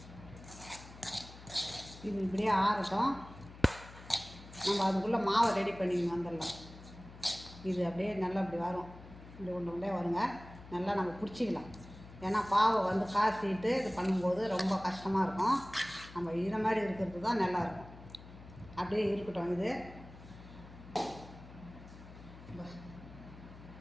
இது இப்படியே ஆறட்டும். நம்ம அதுக்குள்ளே மாவை ரெடி பண்ணிக்கணும். வந்துடலாம். இது அப்படியே நல்லா இப்படி வரும். இப்படி ஒன்று வருங்க. நல்லா நம்ம பிடிச்சிக்கலாம். ஏன்னா பாவை வந்து காய்ச்சிட்டு இது பண்ணும்போது ரொம்ப கஷ்டமாக இருக்கும். நம்ம இதை மாதிரி இருக்கிறது தான் நல்லாயிருக்கும். அப்படியே இருக்கட்டும். இது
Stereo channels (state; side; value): noise; left; hum, 17 dB below the sound